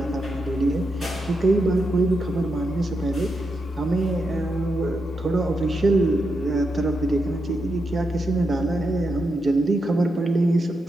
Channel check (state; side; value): normal; both; correlation 0.85